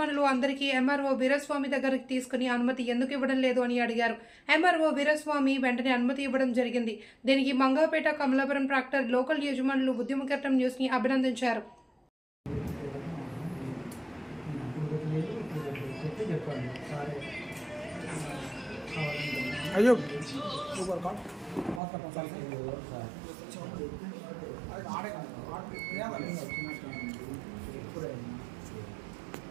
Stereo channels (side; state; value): left; drops out; at 21.8 s